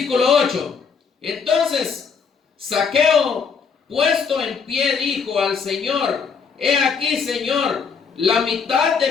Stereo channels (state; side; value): quieter; right; 5.9 dB